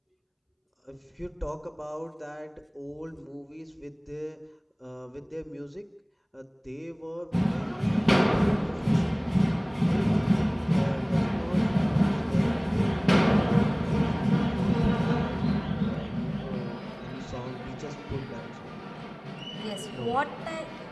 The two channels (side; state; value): both; identical; correlation 1.00